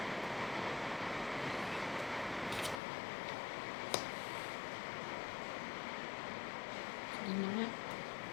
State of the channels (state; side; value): drops out; right; at 2.8 s